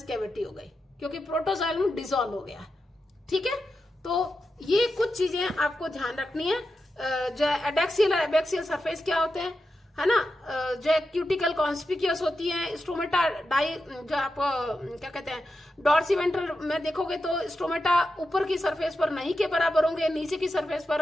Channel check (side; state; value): both; normal; correlation 0.89